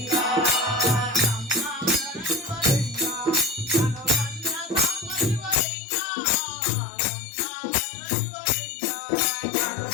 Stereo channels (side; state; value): right; drops out; at 5.6 s